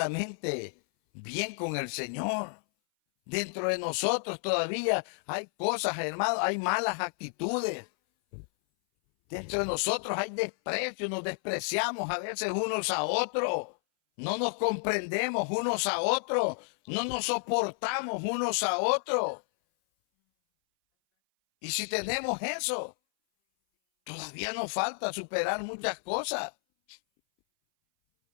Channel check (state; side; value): silent; right; 57 dB below the other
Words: bien con el Señor. Dentro de nosotros todavía hay cosas, hermano, hay malas actitudes. Dentro de nosotros hay desprecio, nos despreciamos a veces unos a otros. No nos comprendemos unos a otros, no nos soportamos unos a otros. Y si tenemos eso, todavía nos falta superar muchas cosas.